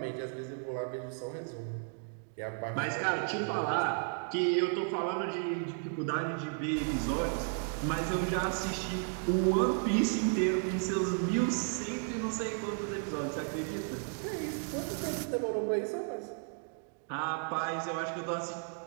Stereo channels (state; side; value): silent; left; 55 dB below the other